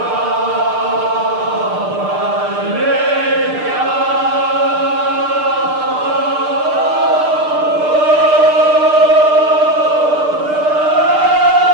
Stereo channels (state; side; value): late; left; 6.6 ms